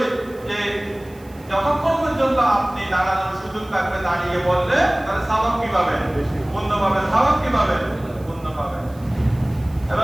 যে যতক্ষণ পর্যন্ত আপনি দাঁড়ানোর সুযোগ থাকবে দাঁড়িয়ে বললে তাহলে সওয়াব কি পাবেন? পুণ্য পাবেন। সওয়াব কি পাবেন? পুণ্য পাবেন।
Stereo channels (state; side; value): noise; right; hiss, 27 dB below the sound